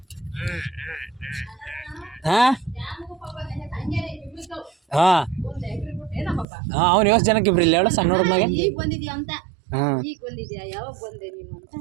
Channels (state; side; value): drops out; left; at 6.5 s